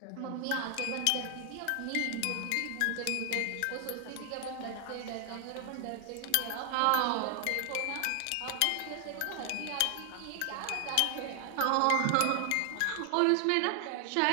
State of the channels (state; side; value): different; both; correlation 0.00